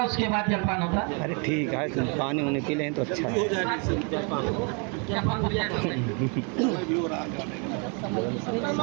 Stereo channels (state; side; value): quieter; left; 35.4 dB